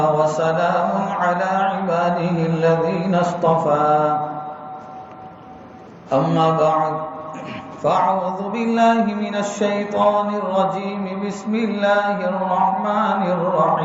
وسلام على عباده الذين اصطفى أما بعد فأعوذ بالله من الشيطان الرجيم بسم الله الرحمن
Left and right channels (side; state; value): both; identical; correlation 1.00